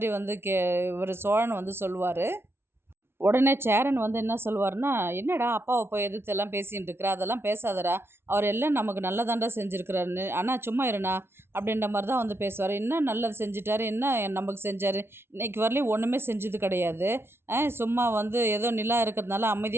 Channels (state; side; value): late; left; 0.12 ms